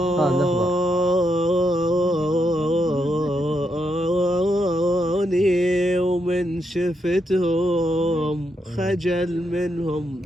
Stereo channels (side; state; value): both; normal; correlation 0.80